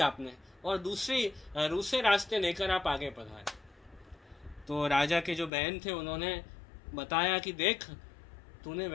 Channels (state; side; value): drops out; right; at 5.5 s